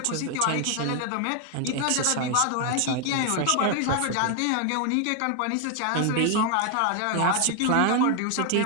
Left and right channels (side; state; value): both; different; correlation 0.00